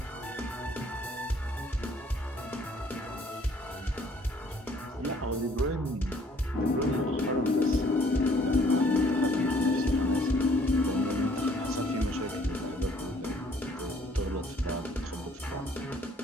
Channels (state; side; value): normal; both; correlation 0.61